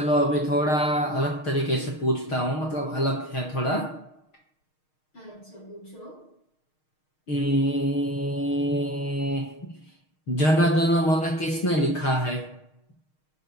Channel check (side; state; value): right; late; 6.5 ms